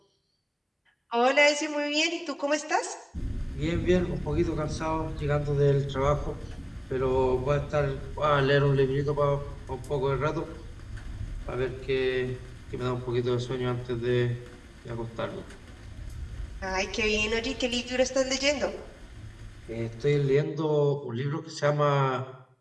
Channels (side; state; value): both; identical; correlation 1.00